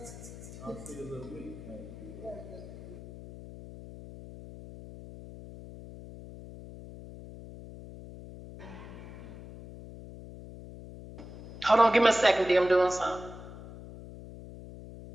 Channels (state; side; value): noise; left; hum, 14 dB below the sound